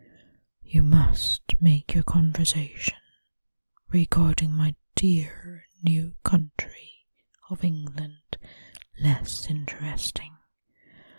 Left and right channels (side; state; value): both; inverted; correlation -1.00